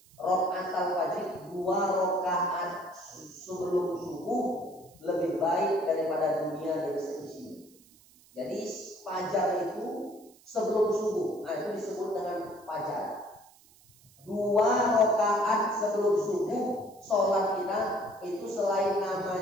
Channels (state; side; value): noise; right; hiss, 27 dB below the sound